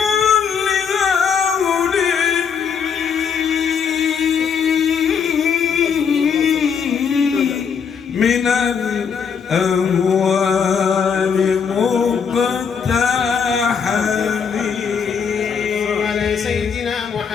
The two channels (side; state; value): right; quieter; 6.6 dB